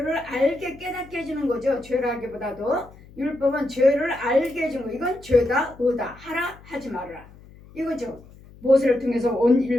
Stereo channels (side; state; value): left; noise; hum, 22 dB below the sound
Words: 알게 깨닫게 해주는 거죠. 죄를 알기보다도 율법은 죄를 알게 해주는 거. 이건 죄다 의다 하라 하지 말아라 이거죠. 모세를 통해서 온